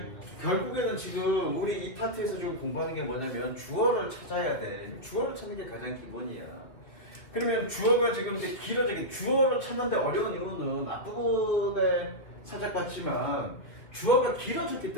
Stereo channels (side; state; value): right; late; 2.7 ms